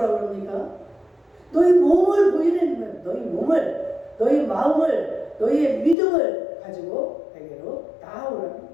그럽니까? 너희 몸을 보이라는 거예요. 너희 몸을, 너희 마음을, 너희의 믿음을 가지고 내게로 나아오라는 거예요.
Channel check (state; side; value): drops out; right; at 6.0 s